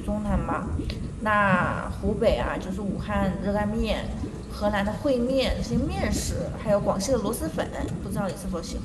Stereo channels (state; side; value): identical; both; correlation 1.00